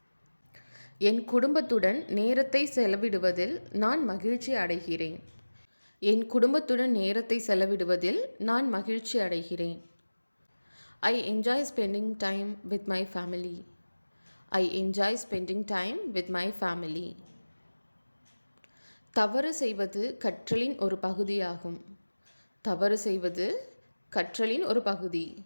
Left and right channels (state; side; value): inverted; both; correlation -1.00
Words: என் குடும்பத்துடன் நேரத்தை செலவிடுவதில் நான் மகிழ்ச்சி அடைகிறேன். என் குடும்பத்துடன் நேரத்தை செலவிடுவதில் நான் மகிழ்ச்சி அடைகிறேன். I enjoy spending time with my family. I enjoy spending time with my family. தவறு செய்வது கற்றலின் ஒரு பகுதியாகும். தவறு செய்வது கற்றலின் ஒரு பகுதி.